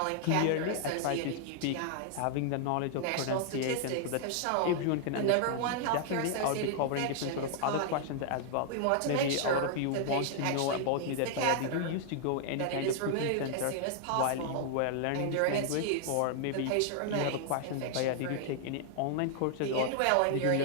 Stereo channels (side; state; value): both; different; correlation -0.01